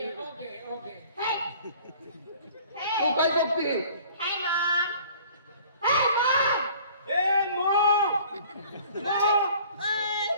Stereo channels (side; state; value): both; inverted; correlation -0.50